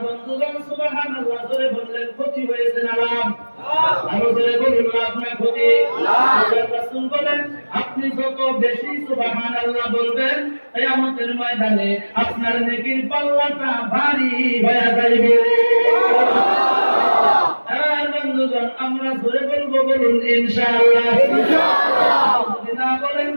বন্ধুগণ, সুবহানাল্লাহ জোরে বললেন ক্ষতি হয়েছে না লাভ? আরো জোরে বলুন লাভ না ক্ষতি? আল্লাহর রাসূল বলেন, আপনি যত বেশি সুবহানাল্লাহ বলবেন কিয়ামতের ময়দানে আপনার নেকির পাল্লাটা ভারী হয়ে যাবে। আর বন্ধুগণ, আমরা জোরে বলবো, বলুন ইনশাআল্লাহ। যদি না বলেন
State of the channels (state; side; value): inverted; both; correlation -1.00